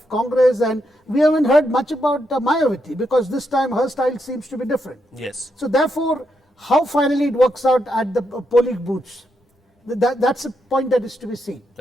Congress, and we haven't heard much about Mayawati, because this time her style seems to be different. Yes. So therefore, how finally it works out at the polling booths, that's a point that is to be seen.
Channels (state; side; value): normal; both; correlation 0.81